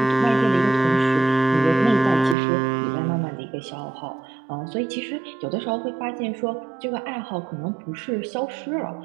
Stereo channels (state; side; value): drops out; left; at 2.4 s